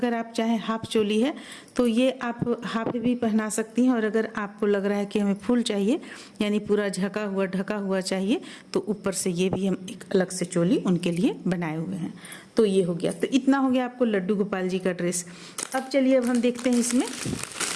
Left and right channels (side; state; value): both; identical; correlation 1.00